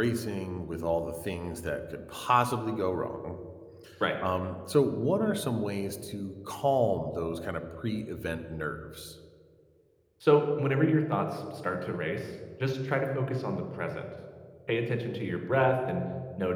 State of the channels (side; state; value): both; identical; correlation 1.00